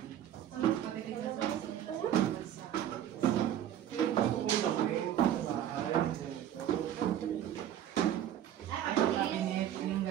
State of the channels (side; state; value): left; quieter; 11.0 dB